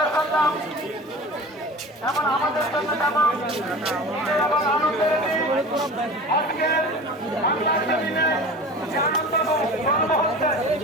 এমন আমাদের জন্য যেমন এবং আনন্দের আজকে বাংলার জমিনে যে আনন্দ গর্ব হচ্ছে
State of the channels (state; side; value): normal; both; correlation 0.36